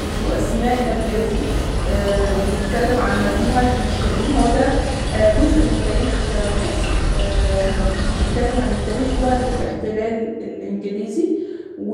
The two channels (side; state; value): both; identical; correlation 1.00